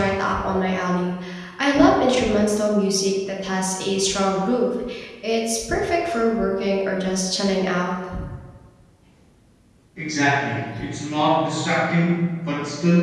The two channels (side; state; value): both; identical; correlation 1.00